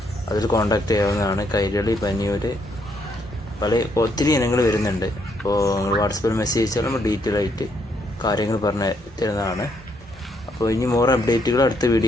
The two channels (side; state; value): both; normal; correlation 0.73